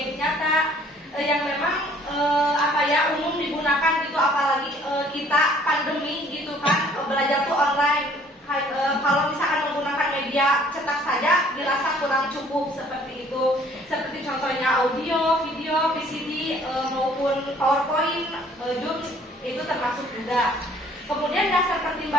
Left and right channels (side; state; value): both; normal; correlation 0.57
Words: nyata yang memang umum digunakan gitu, apalagi kita pandemi gitu kan, belajar tuh online. Kalau misalkan menggunakan media cetak saja dirasa kurang cukup seperti itu. Seperti contohnya audio, video, VCD maupun PowerPoint, Zoom itu termasuk juga. Kemudian dasar